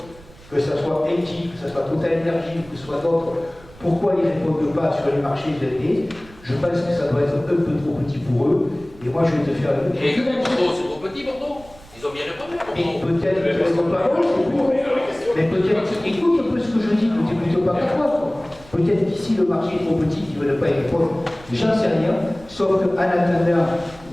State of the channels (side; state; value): right; noise; rumble, 22 dB below the sound